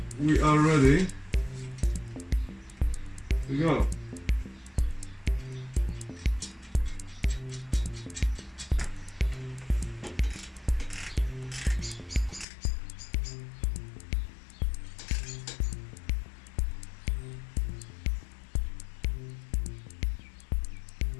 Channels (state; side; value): drops out; right; at 12.5 s